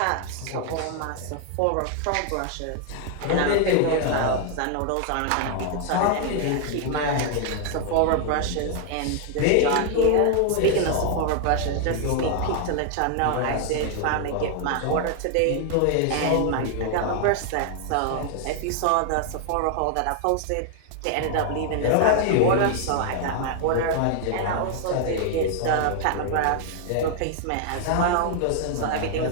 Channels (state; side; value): different; both; correlation 0.00